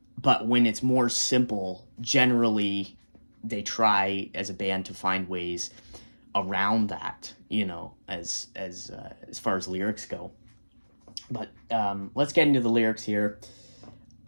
when it's more simple, generally they try as a band to find ways around that, you know, as far as lyrics go. But let's get into the lyrics here.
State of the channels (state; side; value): inverted; both; correlation -1.00